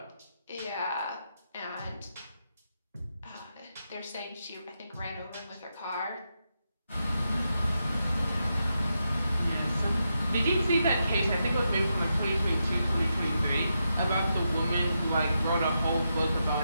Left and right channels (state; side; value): inverted; both; correlation -0.85